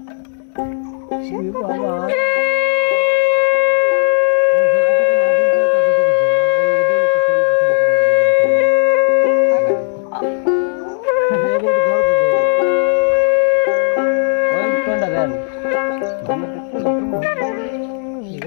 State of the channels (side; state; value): right; silent; digital silence